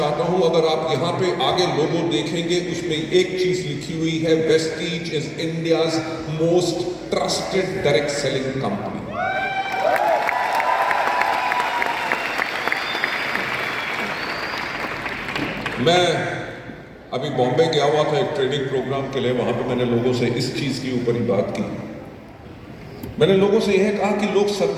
हूं, अगर आप यहां पे आगे लोगो देखेंगे, उसमें एक चीज लिखी हुई है, Vestige is India's most trusted direct selling company. मैं अभी बॉम्बे गया हुआ था एक ट्रेनिंग प्रोग्राम के लिए, वहां पे मैंने लोगों से इस चीज के ऊपर ही बात की। मैंने लोगों से यह कहा कि लोग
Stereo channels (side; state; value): both; identical; correlation 1.00